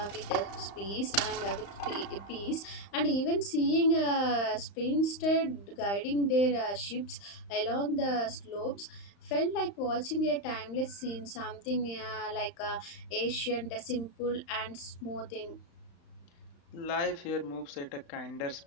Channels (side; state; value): right; late; 35 ms